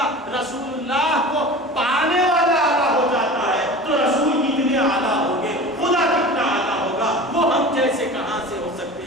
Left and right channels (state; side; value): normal; both; correlation 0.36